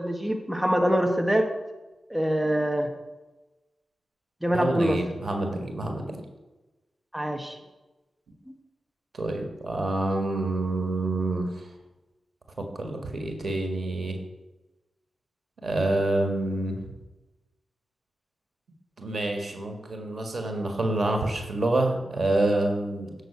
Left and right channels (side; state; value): both; normal; correlation 0.91